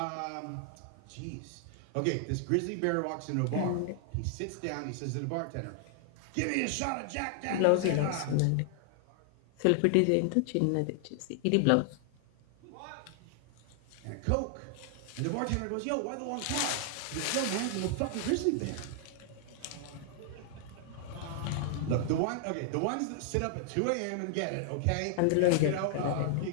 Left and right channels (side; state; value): both; different; correlation 0.00